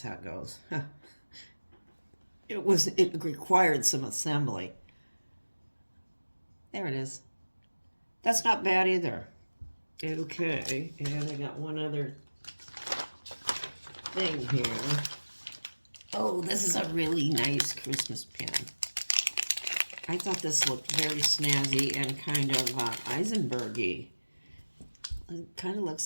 how it goes. It required some assembly. There it is. That's not bad either. Okay, and I got one other thing here. Oh, this is a really nice Christmas pin. I thought this looked very snazzy and kind of Eisenberg-y. It kind of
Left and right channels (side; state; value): both; inverted; correlation -1.00